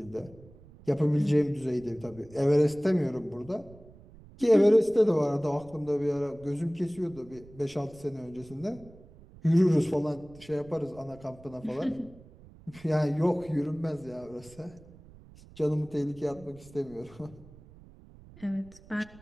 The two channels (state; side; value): noise; right; rumble, 22 dB below the sound